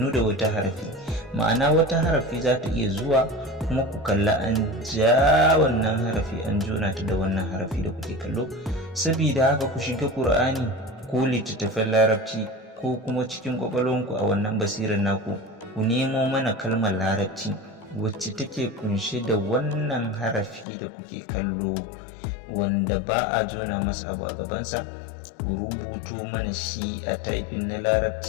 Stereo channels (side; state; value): right; drops out; at 20.7 s